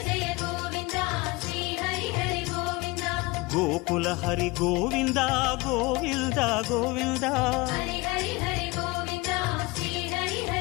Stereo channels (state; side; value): quieter; right; 23.7 dB